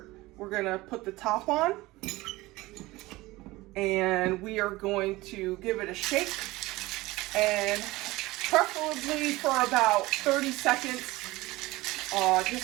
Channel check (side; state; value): left; quieter; 19.8 dB